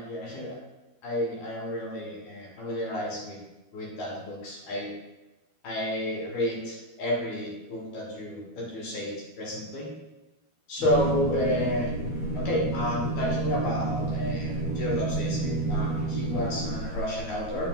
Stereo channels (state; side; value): late; right; 12 ms